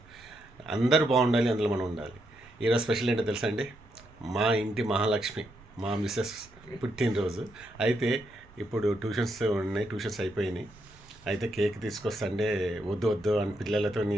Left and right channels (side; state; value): both; normal; correlation 0.80